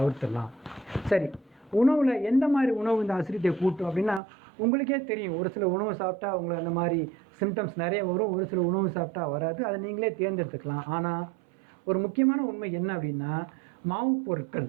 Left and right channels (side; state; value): left; drops out; at 4.2 s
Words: சரி, உணவில் எந்த மாதிரி உணவு இந்த அசிடிட்டியை கூட்டும் அப்படின்னா, உங்களுக்கே தெரியும், ஒரு சில உணவு சாப்பிட்டா உங்களுக்கு அந்த மாதிரி சிம்டம்ஸ் நிறைய வரும், ஒரு சில உணவு சாப்பிட்டா வராது, அதை நீங்களே தேர்ந்தெடுத்துக்கலாம். ஆனால் ஒரு முக்கியமான உண்மை என்ன அப்படின்னா, மாவு பொருட்கள்,